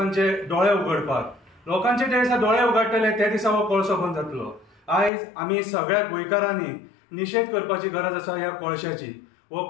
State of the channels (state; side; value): drops out; right; at 5.1 s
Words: दोळे उगडपाक। लोकांचे जे दिसा दोळे उगडटले ते दिसा हो कोळसो बंद जातलो। आयज आमी सगळ्या गोंयकारांनी निशेध करपाची गरज आसा ह्या कोळशाची। हो